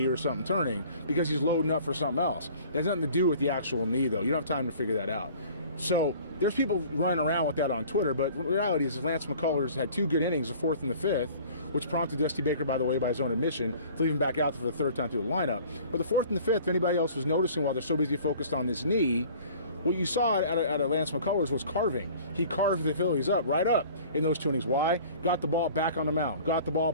or something turning because he's loading up for something else. It has nothing to do with the actual knee, though. You don't have time to figure that out. So there's people running around with that on Twitter, but the reality is Lance McCullers had two good innings, the fourth and the fifth, which prompted Dusty Baker, by the way, by his own admission, to leave him back out for the third time through the lineup. But the fourth and the fifth, if anybody else was noticing while they're so busy focused on this knee, what you saw out of Lance McCullers was carving. He carved the Phillies right up in those two innings. Why? Got the ball back on the mound, got the ball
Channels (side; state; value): both; inverted; correlation -0.48